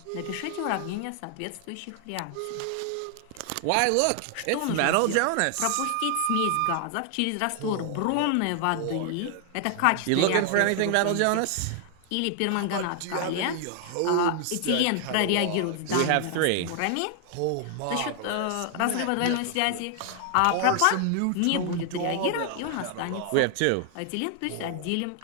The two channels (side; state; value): both; different; correlation 0.00